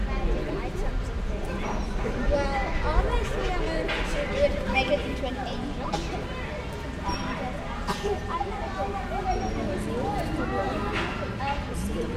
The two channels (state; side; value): identical; both; correlation 1.00